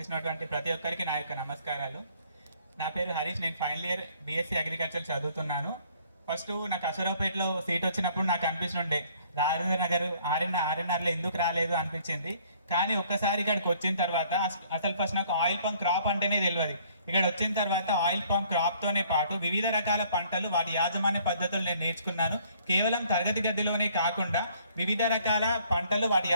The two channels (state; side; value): inverted; both; correlation -0.60